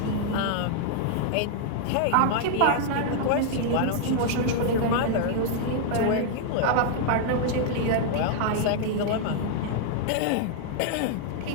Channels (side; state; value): both; different; correlation 0.00